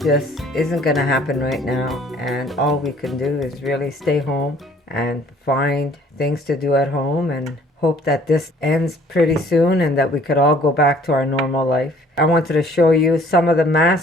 isn't gonna happen right now, and all we can do is really stay home and find things to do at home and hope that this ends pretty soon and that we could all go back to our normal life. I wanted to show you some of the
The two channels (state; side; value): normal; both; correlation 0.56